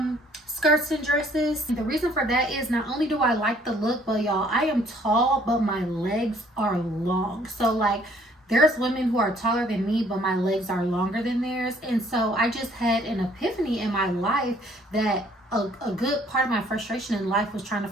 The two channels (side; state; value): both; normal; correlation 0.61